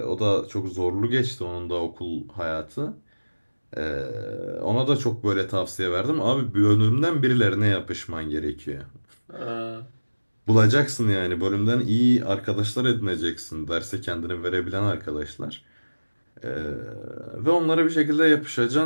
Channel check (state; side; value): inverted; both; correlation -1.00